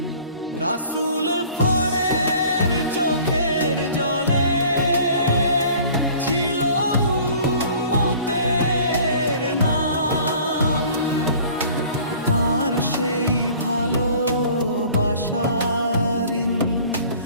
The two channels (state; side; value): inverted; both; correlation -0.49